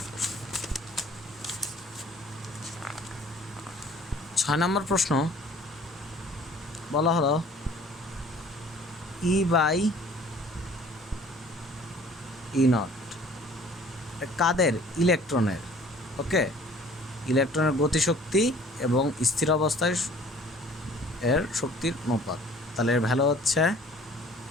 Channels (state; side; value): normal; both; correlation 0.52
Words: প্রশ্ন। 6 নম্বর প্রশ্ন বলা হলো E/E0 কাদের? ইলেকট্রনের। ওকে, ইলেকট্রনের গতিশক্তি এবং স্থির অবস্থায় এর শক্তির অনুপাত। তাহলে এর ভ্যালু হচ্ছে